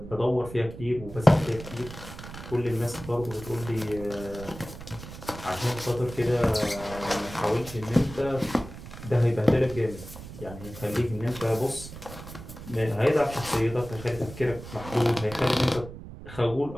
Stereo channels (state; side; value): noise; right; rumble, 13 dB below the sound